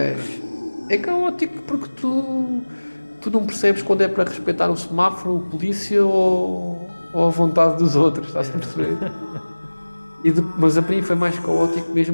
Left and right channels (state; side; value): inverted; both; correlation -1.00